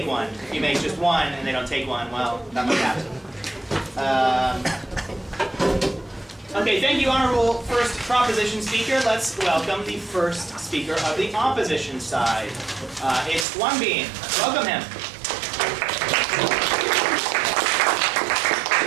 one. If you make just one and they don't take one, well, that might happen. Okay, thank you, honorable first proposition speaker. Let's welcome the first speaker of the opposition side. It's Won Bean. Welcome him.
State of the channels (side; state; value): left; drops out; at 13.5 s